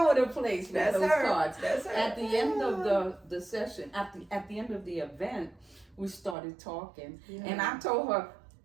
the place with That's those her. cards. That's her. At the end of the session, at the end of the event, we started talking, and I told her,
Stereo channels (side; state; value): left; drops out; at 6.4 s